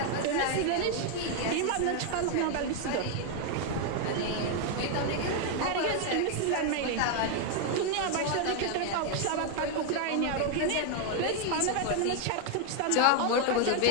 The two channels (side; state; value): both; different; correlation 0.01